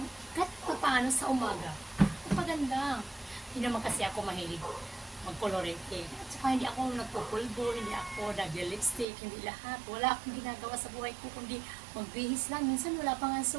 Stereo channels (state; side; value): drops out; left; at 9.1 s